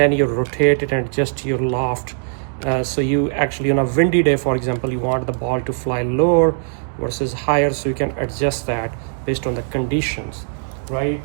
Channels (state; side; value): silent; left; digital silence